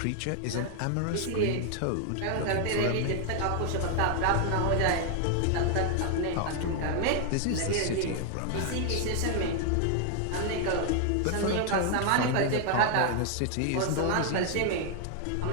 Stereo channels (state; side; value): different; both; correlation 0.00